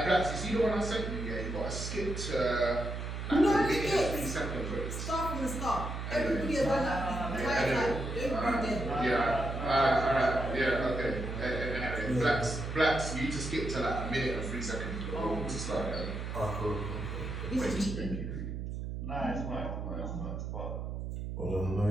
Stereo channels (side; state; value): right; noise; hum, 5 dB below the sound